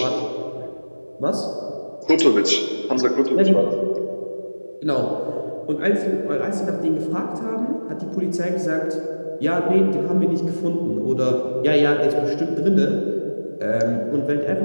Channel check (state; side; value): inverted; both; correlation -1.00